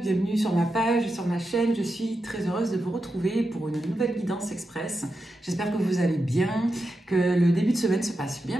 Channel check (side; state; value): both; normal; correlation 0.88